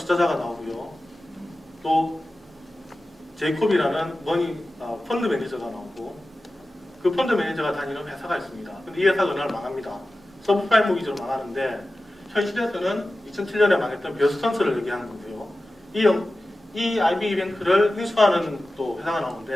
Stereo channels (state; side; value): normal; both; correlation 0.95